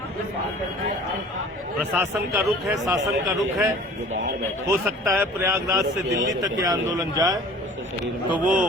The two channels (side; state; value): both; normal; correlation 0.46